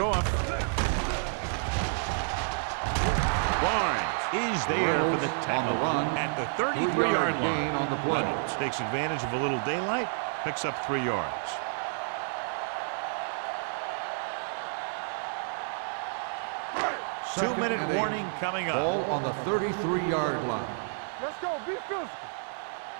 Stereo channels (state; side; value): silent; left; digital silence